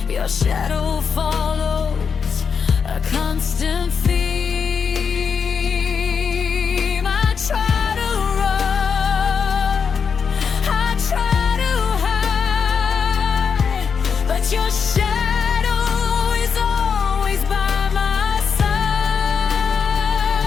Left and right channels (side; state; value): right; quieter; 6.2 dB